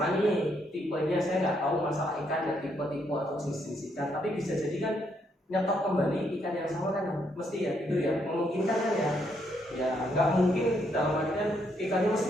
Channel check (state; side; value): normal; both; correlation 0.74